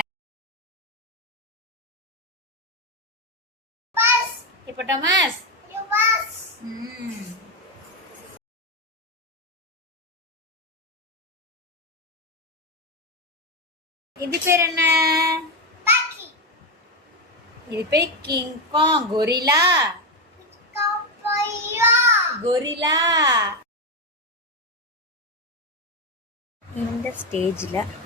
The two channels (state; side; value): normal; both; correlation 0.09